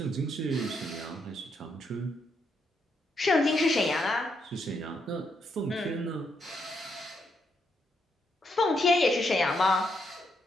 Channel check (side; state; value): both; normal; correlation 0.78